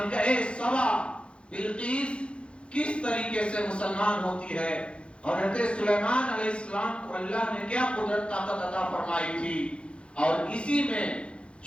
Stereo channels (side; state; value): right; late; 0.058 ms